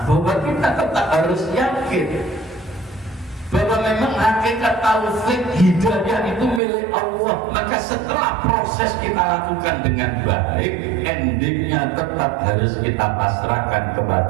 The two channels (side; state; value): left; drops out; at 6.6 s